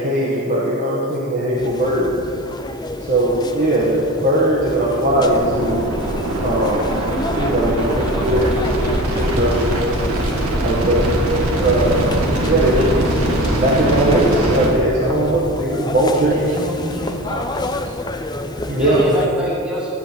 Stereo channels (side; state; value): right; noise; hiss, 30 dB below the sound